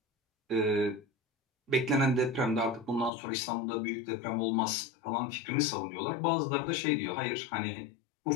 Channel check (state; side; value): drops out; right; at 3.1 s